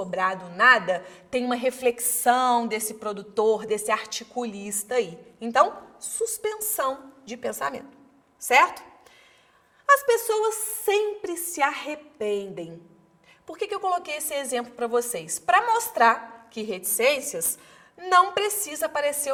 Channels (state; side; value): identical; both; correlation 1.00